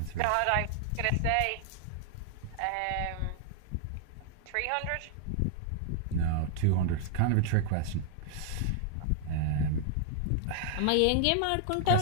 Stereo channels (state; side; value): different; both; correlation 0.00